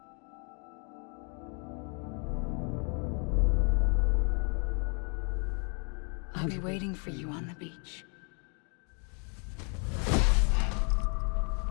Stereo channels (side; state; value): right; quieter; 37.2 dB